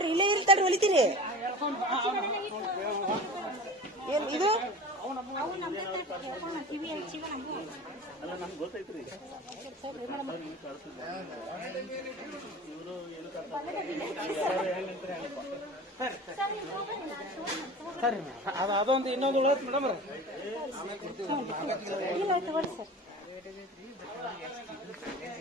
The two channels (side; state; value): both; normal; correlation 0.36